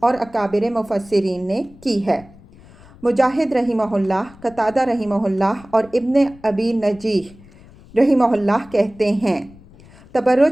اکابر مفسرین نے کی ہے۔ مجاہد رحمہ اللہ، قتادہ رحمہ اللہ اور ابن ابی نجیح رحمہ اللہ کہتے ہیں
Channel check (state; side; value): noise; left; rumble, 23 dB below the sound